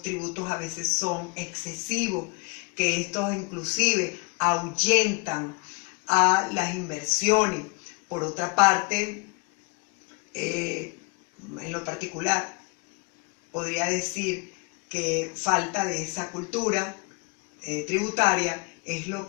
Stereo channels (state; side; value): quieter; right; 31.1 dB